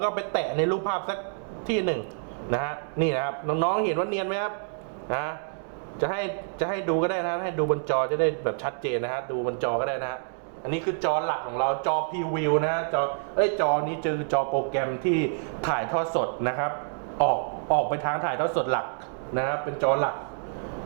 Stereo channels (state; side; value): silent; left; digital silence